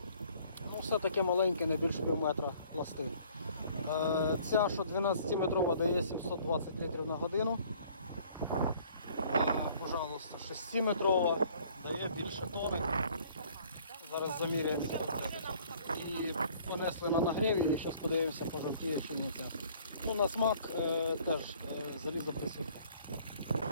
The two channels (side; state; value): both; inverted; correlation -0.57